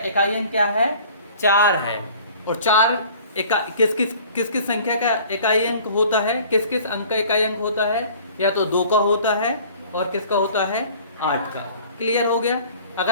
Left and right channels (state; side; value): inverted; both; correlation -0.49